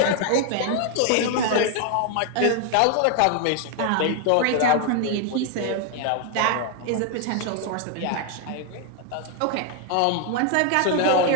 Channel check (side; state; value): both; different; correlation 0.00